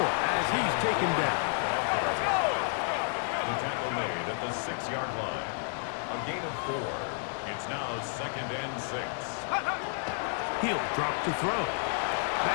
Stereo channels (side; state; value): right; silent; 57 dB below the other